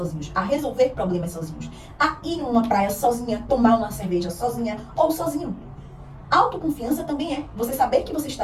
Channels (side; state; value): both; identical; correlation 1.00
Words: a resolver problemas sozinhos, a ir numa praia sozinha, tomar uma cerveja sozinha ou sozinho. Autoconfiança também é você saber que você